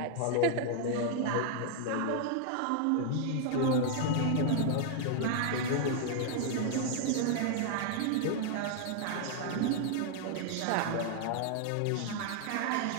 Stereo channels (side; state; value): both; different; correlation 0.00